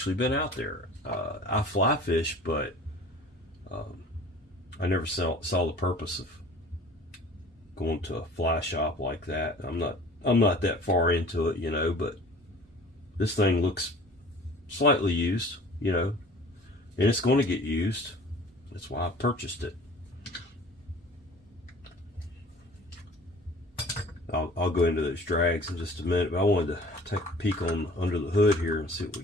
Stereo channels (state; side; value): normal; both; correlation 0.46